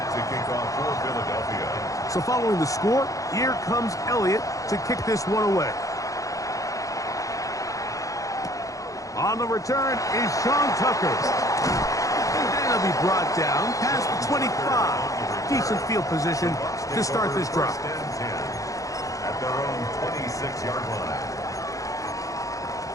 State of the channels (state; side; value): late; right; 0.16 ms